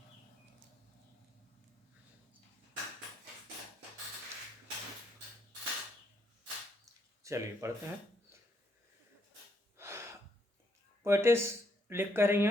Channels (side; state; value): both; normal; correlation 0.74